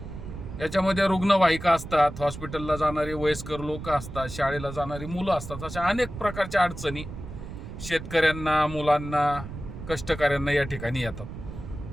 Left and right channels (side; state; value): right; noise; rumble, 10 dB below the sound